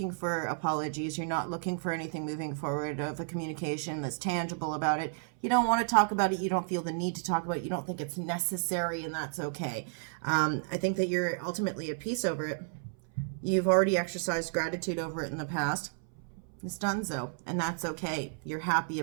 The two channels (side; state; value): left; silent; 56 dB below the other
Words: for apologies. You're not looking for anything moving forward of a communication that's tangible about it. You don't want to talk about it. You don't feel the need to talk about it. You don't think it's necessary, and that's okay. I think that you're ultimately at peace over it. You've already exercised gratitude over it in the past. It's done so, and that's okay. You're happy